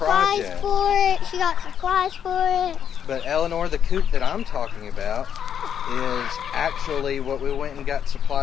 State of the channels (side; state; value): right; quieter; 8.6 dB